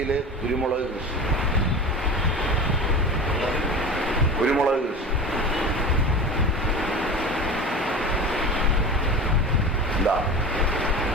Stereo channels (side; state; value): both; normal; correlation 0.32